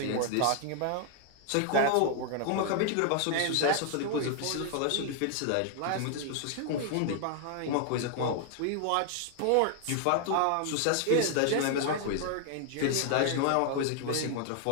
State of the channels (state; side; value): different; both; correlation 0.00